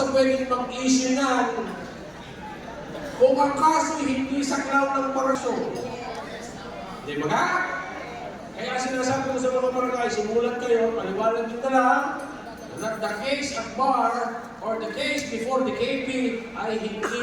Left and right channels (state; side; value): identical; both; correlation 1.00